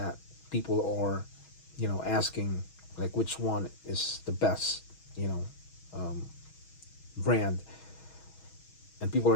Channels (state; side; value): late; right; 6.2 ms